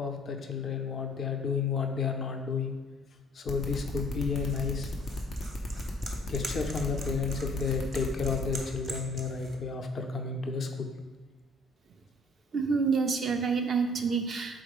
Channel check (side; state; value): both; normal; correlation 0.56